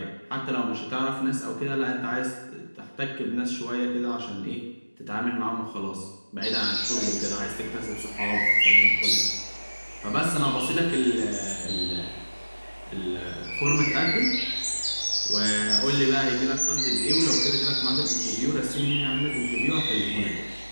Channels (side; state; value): both; inverted; correlation -1.00